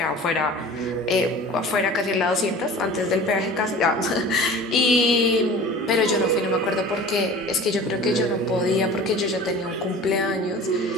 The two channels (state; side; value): normal; both; correlation 0.40